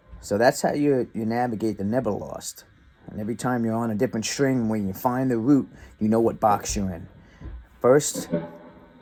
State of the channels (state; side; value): identical; both; correlation 1.00